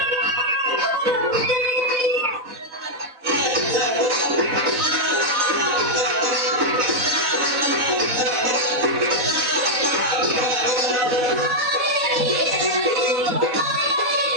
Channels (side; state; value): left; late; 4.0 ms